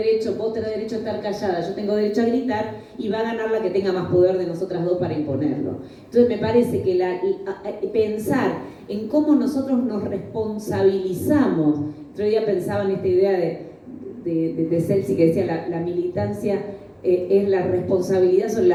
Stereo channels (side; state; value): both; identical; correlation 1.00